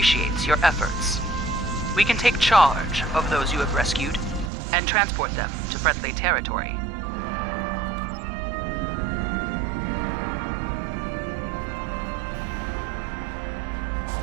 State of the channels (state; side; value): drops out; left; at 4.5 s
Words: your efforts. We can take charge of those you have rescued and transport them to friendly territory.